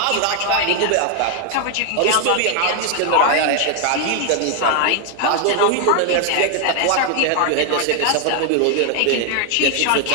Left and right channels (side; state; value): both; different; correlation 0.00